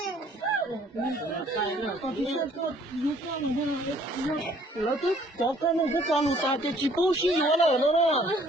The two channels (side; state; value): both; normal; correlation 0.59